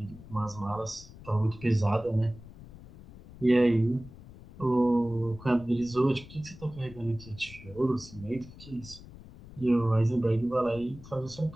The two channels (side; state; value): left; noise; rumble, 18 dB below the sound